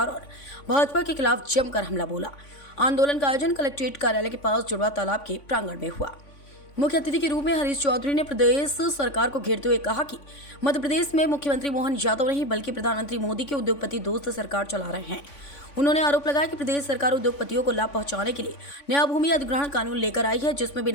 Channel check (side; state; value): right; late; 3.5 ms